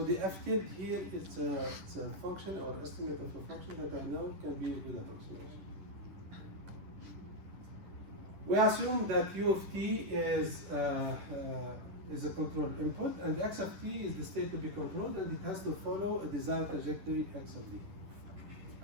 the f tilde here is a function or estimate of a function that I know can be a good approximation. We assume that u of t is a control input, and x of t is the state to be controlled, and it has to follow a desired trajectory x of d.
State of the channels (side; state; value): left; late; 10 ms